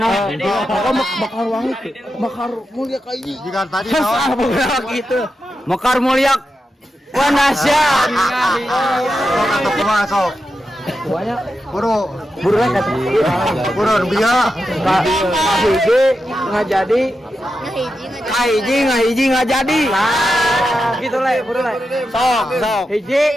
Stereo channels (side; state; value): both; normal; correlation 0.89